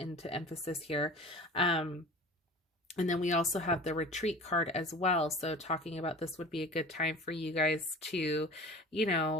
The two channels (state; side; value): normal; both; correlation 0.39